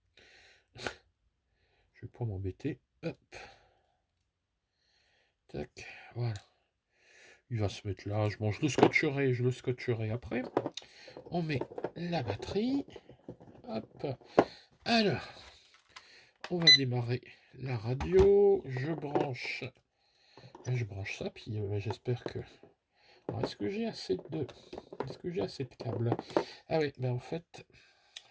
Je vais pas m'embêter. Hop. Tac. Voilà. Il va se mettre là. Bon, je le scotcherai après. On met la batterie. Hop. Alors, on va démarrer la radio. Je branche ça, puis j'espère que. Alors, est-ce que j'ai assez de câbles? Ah oui, mais en fait,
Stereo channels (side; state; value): both; identical; correlation 1.00